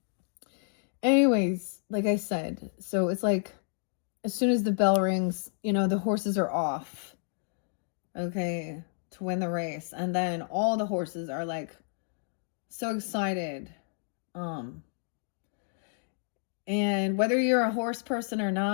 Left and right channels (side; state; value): right; silent; digital silence